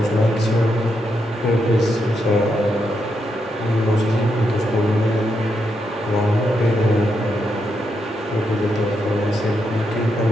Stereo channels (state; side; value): normal; both; correlation 0.82